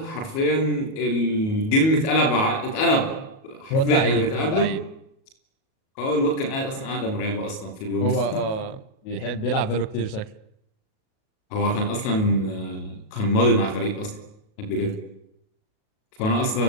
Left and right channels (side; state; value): right; late; 37 ms